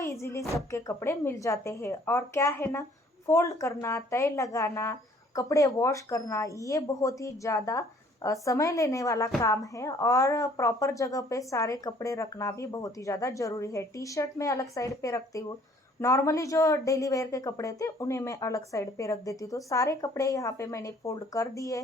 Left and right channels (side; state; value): both; normal; correlation 0.58